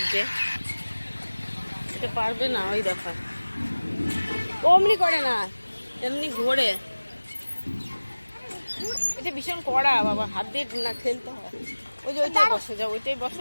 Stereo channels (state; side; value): inverted; both; correlation -1.00